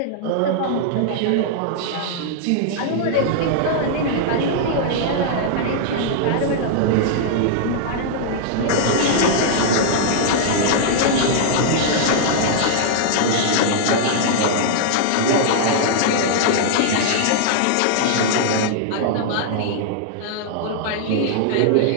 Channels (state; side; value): different; both; correlation -0.01